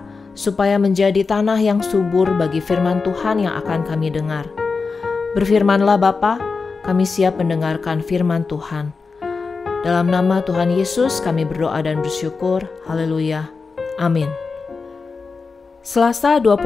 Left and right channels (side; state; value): right; quieter; 4.5 dB